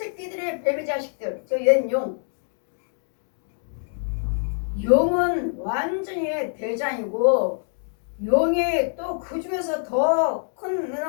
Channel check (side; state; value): right; silent; digital silence